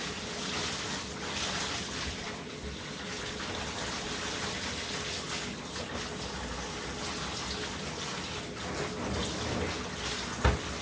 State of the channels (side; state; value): both; identical; correlation 1.00